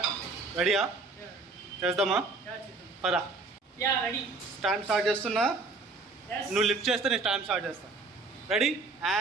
రెడీయా? చేద్దామా? పరా. స్టాండ్ స్టార్ట్ చేస్తున్నా. నువ్వు లిఫ్ట్ చేస్తే నేను స్టాండ్ స్టార్ట్ చేస్తాను. Ready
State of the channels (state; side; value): quieter; left; 3.7 dB